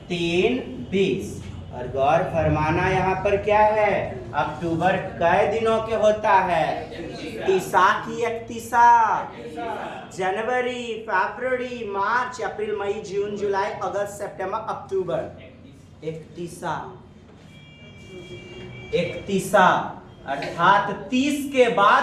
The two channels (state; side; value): identical; both; correlation 1.00